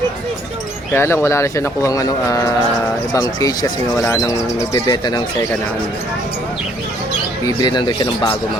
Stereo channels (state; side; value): normal; both; correlation 0.64